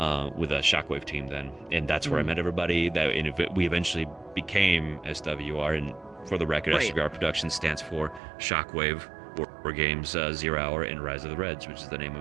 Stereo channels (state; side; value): drops out; left; at 8.2 s